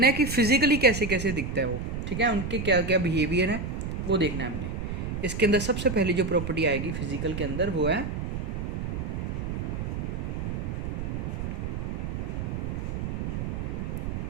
है कि फिजिकली कैसे कैसे दिखता है वो। ठीक है, उनके क्या क्या बिहेवियर है वो देखना है हमने। इसके अंदर सबसे पहली जो प्रॉपर्टी आएगी फिजिकल के अंदर वो है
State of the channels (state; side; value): noise; right; rumble, 3 dB below the sound